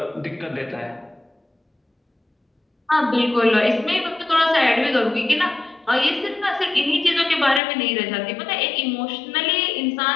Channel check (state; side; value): drops out; right; at 7.6 s